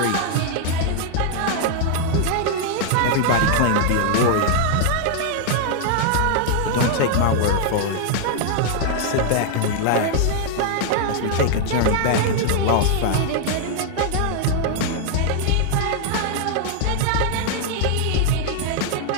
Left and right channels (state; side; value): different; both; correlation 0.00